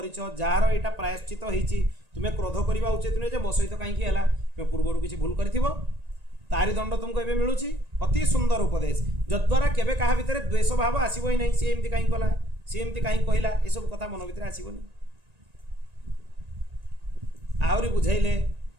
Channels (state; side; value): late; left; 1.9 ms